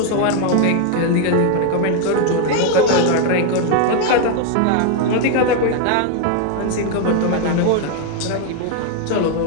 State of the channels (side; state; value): both; different; correlation 0.01